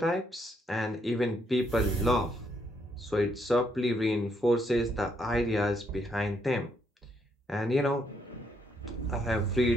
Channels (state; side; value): normal; both; correlation 0.74